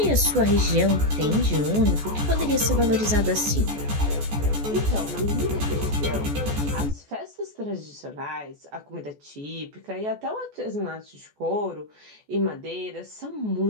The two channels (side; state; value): left; late; 14 ms